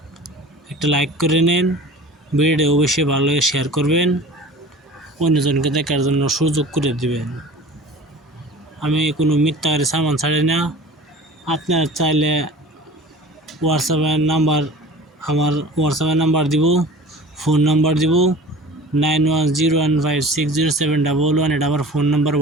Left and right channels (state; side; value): normal; both; correlation 0.41